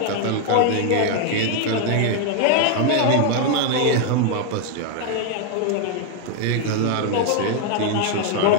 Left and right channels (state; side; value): different; both; correlation 0.00